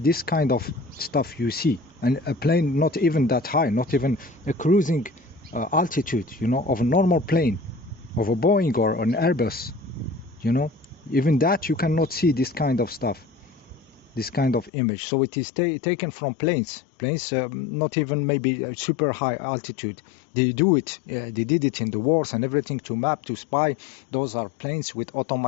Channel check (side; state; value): right; drops out; at 14.7 s